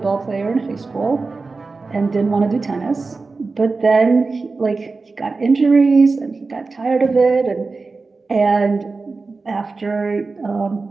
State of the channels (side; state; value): left; quieter; 4.0 dB